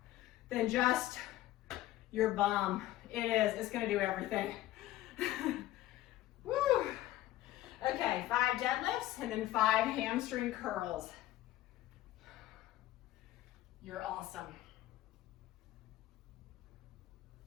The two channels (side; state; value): right; quieter; 15.3 dB